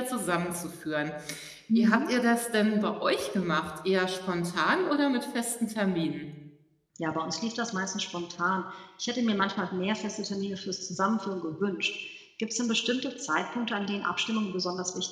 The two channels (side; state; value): both; identical; correlation 1.00